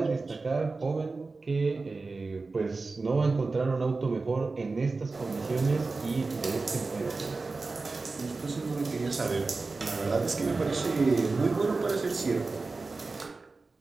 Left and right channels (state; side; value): quieter; left; 3.8 dB